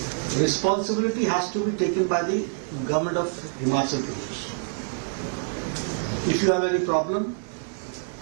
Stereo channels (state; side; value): silent; left; digital silence